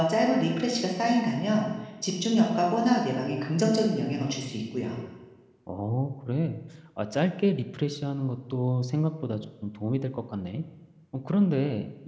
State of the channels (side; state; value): both; identical; correlation 1.00